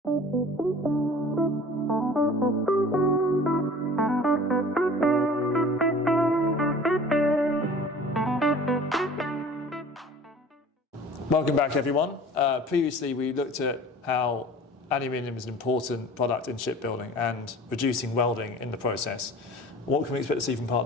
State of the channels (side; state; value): both; normal; correlation 0.44